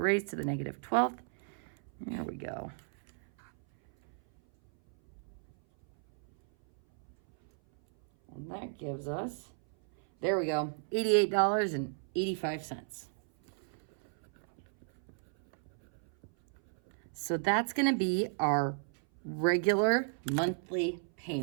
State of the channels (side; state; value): left; silent; 55 dB below the other